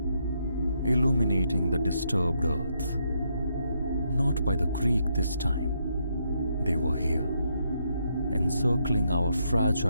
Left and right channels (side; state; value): both; inverted; correlation -0.77